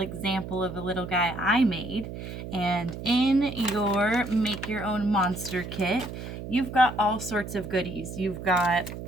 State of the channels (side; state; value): right; noise; hum, 9 dB below the sound